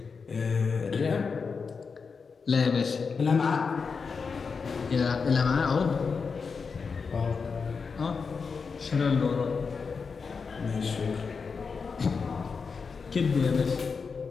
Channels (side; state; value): right; quieter; 5.2 dB